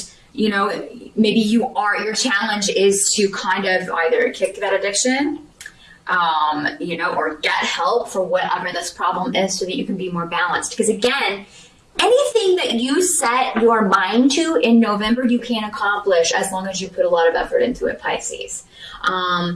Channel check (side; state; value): both; identical; correlation 1.00